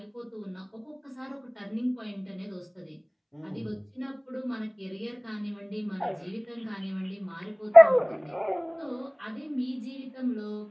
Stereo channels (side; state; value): both; identical; correlation 1.00